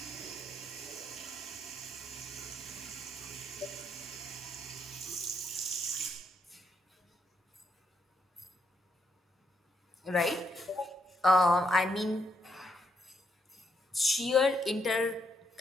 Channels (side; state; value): both; normal; correlation 0.77